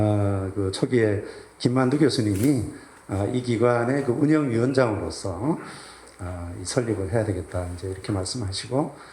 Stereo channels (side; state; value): both; identical; correlation 1.00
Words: 그 초기에 김만두 교수님이 이 기관의 그 운영위원장으로서 이 설립을 해야 되겠다 이제 이렇게 말씀하시고